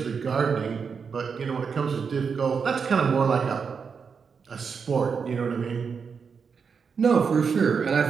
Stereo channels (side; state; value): left; quieter; 5.9 dB